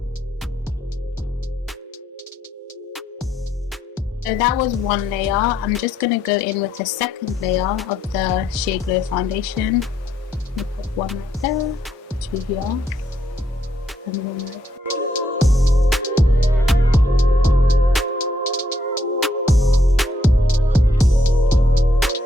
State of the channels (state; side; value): normal; both; correlation 0.74